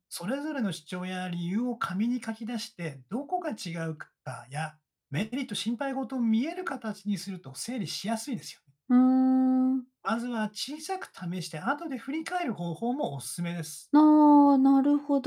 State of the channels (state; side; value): identical; both; correlation 1.00